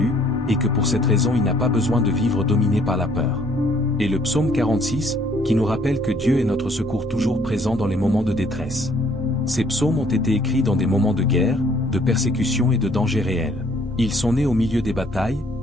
et que pour cette raison il n'a pas besoin de vivre dominé par la peur. Et le psaume 46, qui nous rappelle que Dieu est notre secours toujours présent dans les moments de détresse. Ces psaumes ont été écrits dans des moments de guerre, de persécution et de danger réel. Ils sont nés au milieu des batailles,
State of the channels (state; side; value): normal; both; correlation 0.62